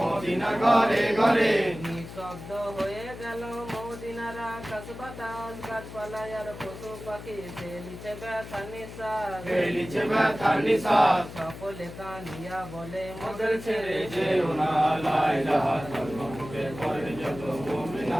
ঘরে ঘরে নিঃশব্দ হয়ে গেল মদিনার আকাশ বাতাস গাছপালায় আর পশু পাখি ফেলিছে ব্যথা নিঃশ্বাস ফেলিছে ব্যথার নিঃশ্বাস সকলে কাঁদিয়া বলে মোদের ছেড়ে যেও না লা ইলাহা কলমা মুখে পড়েন যত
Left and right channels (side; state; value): left; noise; hum, 13 dB below the sound